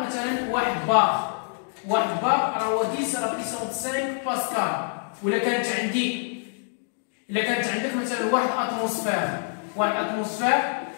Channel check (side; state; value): right; silent; 58 dB below the other